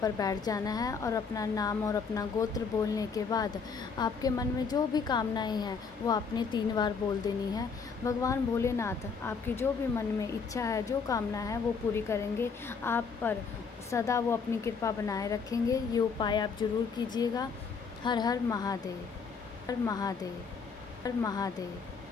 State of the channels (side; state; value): right; quieter; 5.4 dB